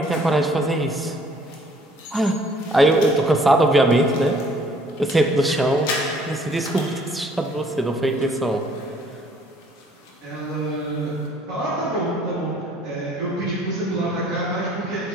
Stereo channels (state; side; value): normal; both; correlation 0.59